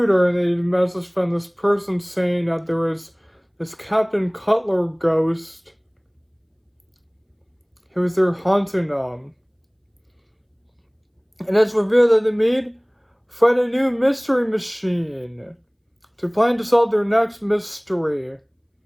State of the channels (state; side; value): identical; both; correlation 1.00